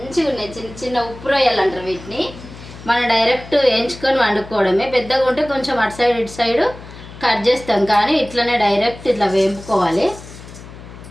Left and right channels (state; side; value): noise; left; hum, 16 dB below the sound